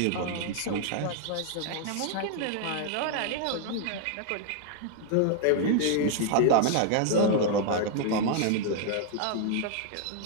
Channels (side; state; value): both; different; correlation 0.00